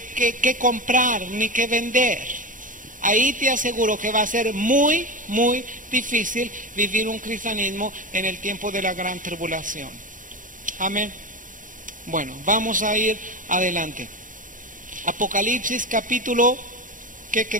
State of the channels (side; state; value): left; late; 0.38 ms